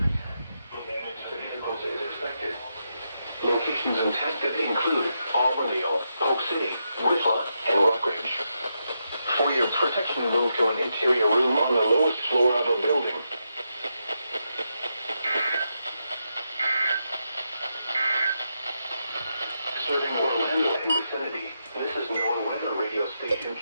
Locations impacted include Auburndale, Polk City, Whistler, and Rockridge. For your protection, move to an interior room on the lowest floor of a building. Serving Orlando and vicinity, this is NOAA Weather Radio Station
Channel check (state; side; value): inverted; both; correlation -0.84